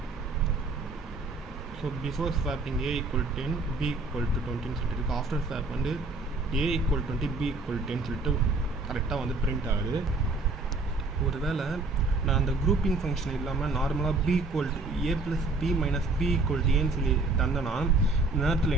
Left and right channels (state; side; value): quieter; left; 3.4 dB